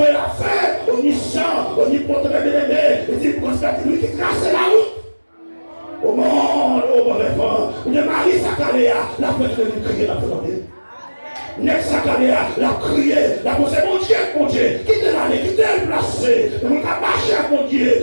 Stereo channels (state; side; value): inverted; both; correlation -1.00